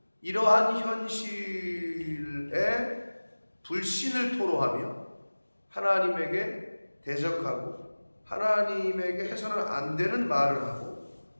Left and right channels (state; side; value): inverted; both; correlation -1.00